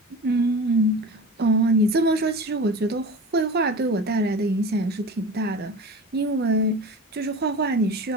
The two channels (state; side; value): normal; both; correlation 0.33